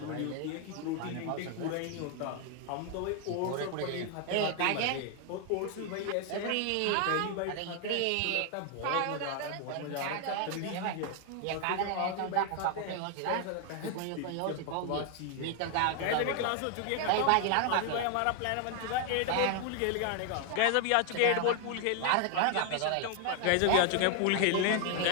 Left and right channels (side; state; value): both; different; correlation 0.00